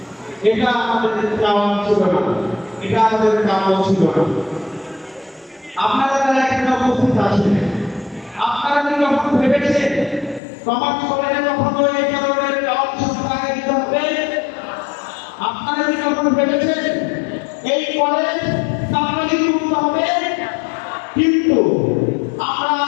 এটা আমাদের চাওয়া ছিল না, এটা আমাদের কাম্য ছিল না। আপনারা যারা এখানে উপস্থিত আছেন, আপনারা কি কখনো ভেবেছেন কমার্স কলেজে কখনো এই ধরনের অংশগ্রহণ আগে দিতে হবে? আপনারা কি কখনো ভেবেছেন এই কলেজ সামাজিক মুক্ত হবে? কিন্তু আমরা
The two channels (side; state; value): right; drops out; at 10.4 s